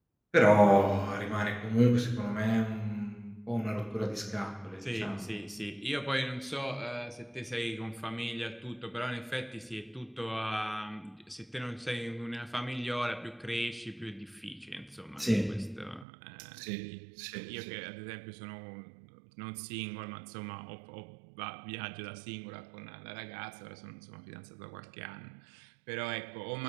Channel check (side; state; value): left; drops out; at 16.1 s